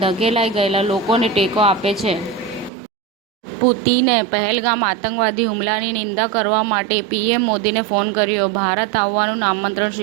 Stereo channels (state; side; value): drops out; left; at 2.7 s